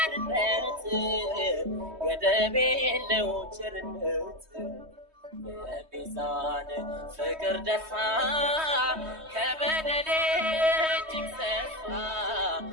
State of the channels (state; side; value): late; left; 3.2 ms